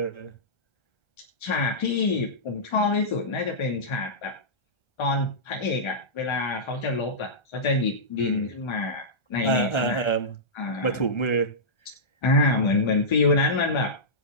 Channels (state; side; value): late; right; 1.3 ms